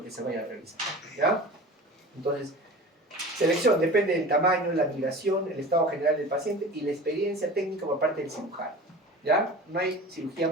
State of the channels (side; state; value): both; normal; correlation 0.37